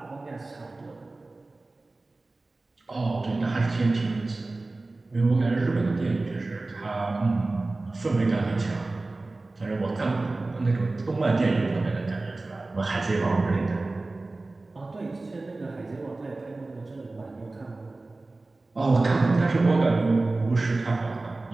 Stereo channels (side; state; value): left; quieter; 3.2 dB